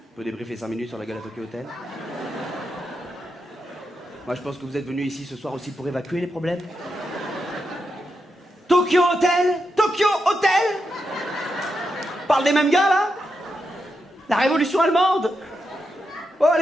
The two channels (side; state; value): both; normal; correlation 0.86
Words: peut débriefer 5 minutes sur la gueule à Tokyo Hotel? Moi je pense que vous êtes venus ici ce soir aussi pour évacuer les problèmes. Tokyo Hotel? Tokyo Hotel? Parle des mêmes gars là? La révolution allemande? Oh